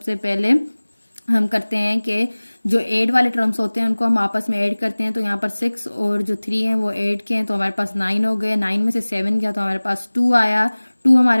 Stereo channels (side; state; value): both; inverted; correlation -1.00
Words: पहले हम करते हैं कि जो ऐड वाले टर्म्स होते हैं उनको हम आपस में ऐड करते हैं। तो यहाँ पर 6 और जो 3 हैं वो ऐड के हैं तो हमारे पास 9 हो गए। 9 में से 7 गया तो हमारे पास 2 आया। 2